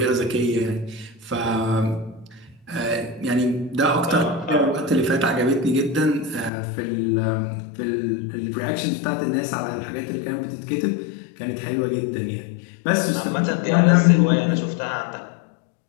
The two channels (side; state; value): right; drops out; at 6.5 s